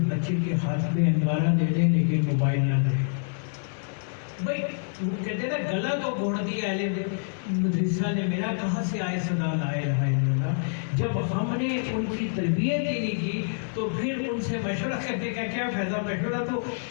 بچے کے ہاتھ میں انگارہ دے دیں لیکن موبائل نہ دیں۔ بھائی وہ کہتے نا گلا تو گھوڑ دیا اہل مدرسہ نے میرا، کہاں سے آئے صدا لا الہ الا اللہ۔ جب ہم نے ان کی تربیت ہی نہیں کی تو پھر ان سے مشورہ کرنے کا کیا فائدہ؟ مشورہ تو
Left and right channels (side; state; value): right; silent; 60 dB below the other